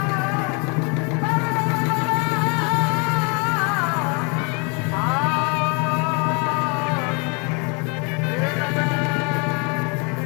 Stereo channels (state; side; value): quieter; right; 33.6 dB